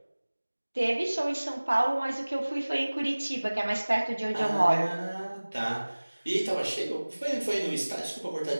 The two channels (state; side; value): inverted; both; correlation -1.00